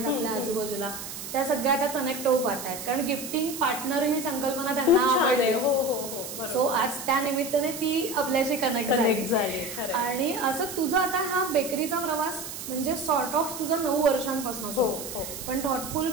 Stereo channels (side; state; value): right; noise; hiss, 9 dB below the sound